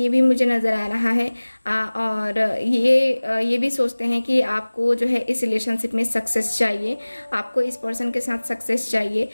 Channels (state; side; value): inverted; both; correlation -1.00